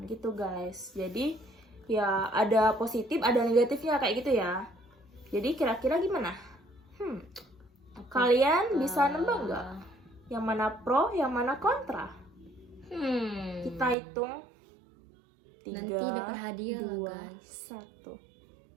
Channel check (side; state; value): left; drops out; at 14.0 s